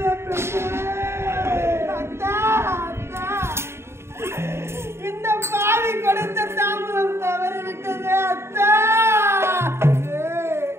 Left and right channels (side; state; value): left; late; 0.12 ms